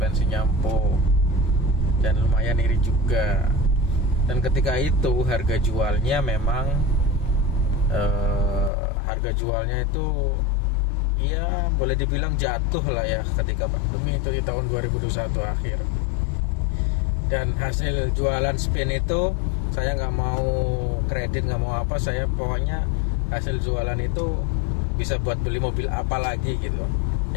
empuk dan lumayan iri juga. Dan ketika itu harga jualnya memang harga jualnya itu ya boleh dibilang jatuh lah ya ketika pandemi itu di tahun 2021 akhir. Dan hasil jualan Spin itu saya nggak mau kredit, nggak mau apa, saya pokoknya hasil jualan itu bisa buat beli mobil apa lagi gitu.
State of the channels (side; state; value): right; drops out; at 8.7 s